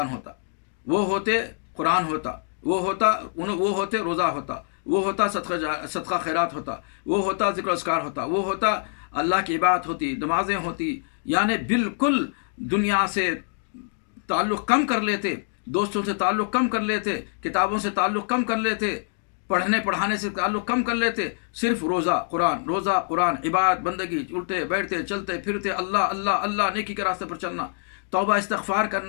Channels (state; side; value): silent; right; digital silence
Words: ہوتا، وہ ہوتے قرآن ہوتا، وہ ہوتے روزہ ہوتا، وہ ہوتا صدقہ خیرات ہوتا، وہ ہوتا ذکر و اذکار ہوتا، وہ ہوتا اللہ کی عبادت ہوتی، نمازیں ہوتی، یعنی بالکل دنیا سے تعلق کم کر لیتے، دوستوں سے تعلق کم کر لیتے، کتابوں سے تعلق کم کر لیتے، پڑھنے پڑھانے سے تعلق کم کر لیتے، صرف روزہ قرآن، عبادت بندگی، اٹھتے بیٹھتے چلتے پھرتے، اللہ اللہ اللہ، نیکی کے راستے پر چلنا، توبہ استغفار